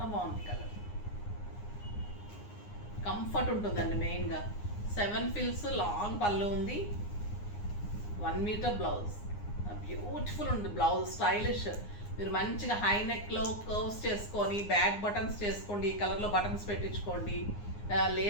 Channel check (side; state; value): right; late; 9.7 ms